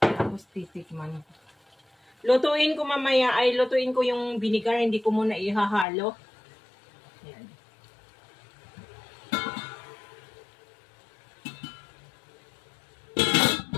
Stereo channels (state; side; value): drops out; right; at 5.9 s